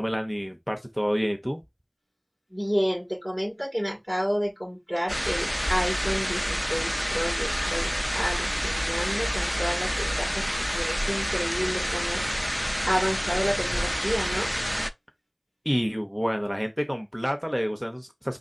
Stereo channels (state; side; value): identical; both; correlation 1.00